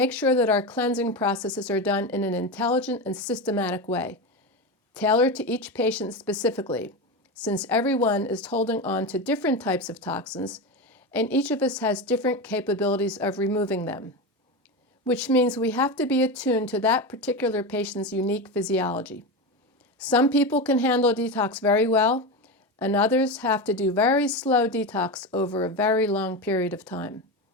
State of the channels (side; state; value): both; normal; correlation 0.19